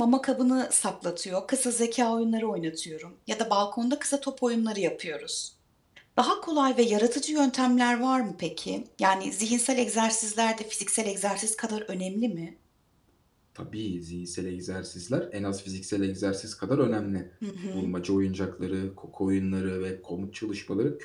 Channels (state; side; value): identical; both; correlation 1.00